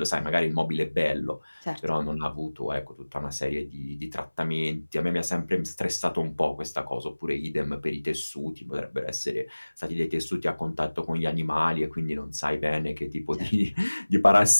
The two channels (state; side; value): inverted; both; correlation -1.00